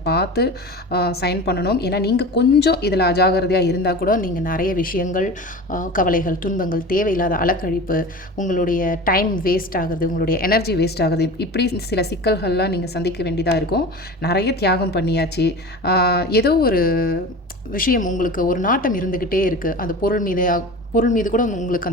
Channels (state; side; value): normal; both; correlation 0.33